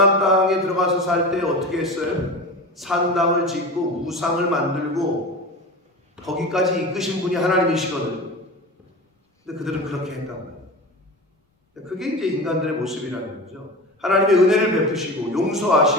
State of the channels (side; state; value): both; normal; correlation 0.30